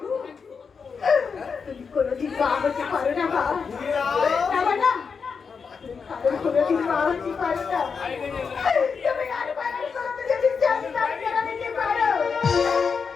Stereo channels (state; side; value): quieter; right; 5.7 dB